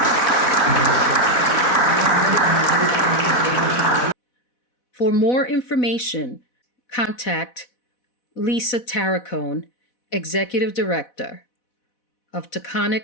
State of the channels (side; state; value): right; late; 4.1 ms